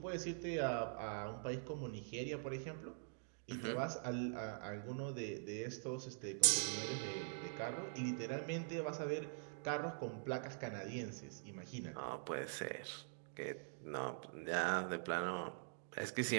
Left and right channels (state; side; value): silent; left; digital silence